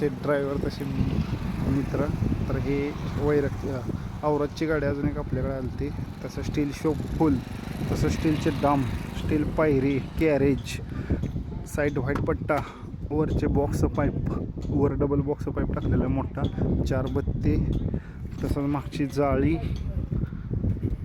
ड्रायव्हर, तसे मित्र. तर हे औरतची गाडी अजून एक आपल्याकडे आली ती. तसं स्टील शॉप फुल, तसं स्टीलचे डाम, स्टील पायरी, कॅरेज, साईड व्हाईट पट्टा, वरचे बॉक्स पाईप, वर डबल बॉक्स पाईप टाकलेला मोठा, 4 बत्ती, तसंच मागची जाळी,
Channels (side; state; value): both; identical; correlation 1.00